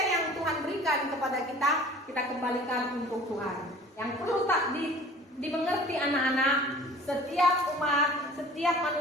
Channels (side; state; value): both; normal; correlation 0.46